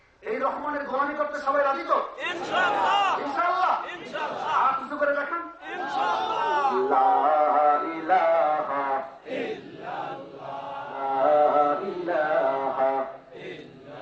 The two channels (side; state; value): both; identical; correlation 1.00